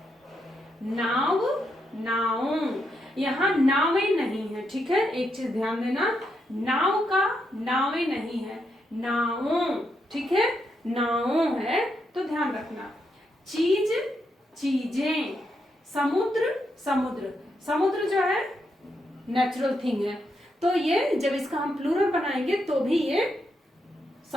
नाव, नाव। यहाँ नावे नहीं है, ठीक है, एक चीज ध्यान देना, नाव का नावे नहीं है, नावों, ठीक है, नावों है, तो ध्यान रखना। चीज, चीजें। समुद्र, समुद्र। समुद्र जो है नेचुरल थिंग है, तो ये जब इसका हम प्लूरल बनाएंगे तो भी ये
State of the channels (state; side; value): normal; both; correlation 0.81